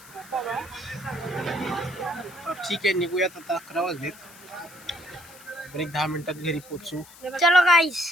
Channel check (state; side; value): noise; left; hiss, 21 dB below the sound